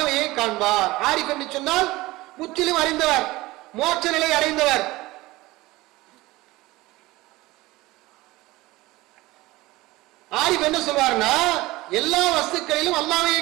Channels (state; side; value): quieter; left; 19.6 dB